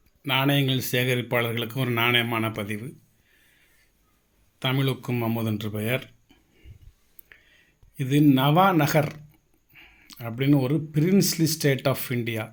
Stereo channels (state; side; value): identical; both; correlation 1.00